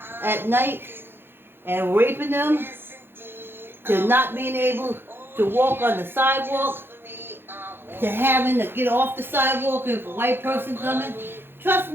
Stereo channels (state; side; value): late; left; 0.10 ms